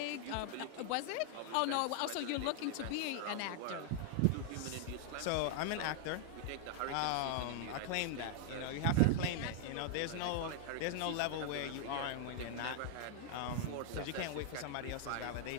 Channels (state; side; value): different; both; correlation 0.00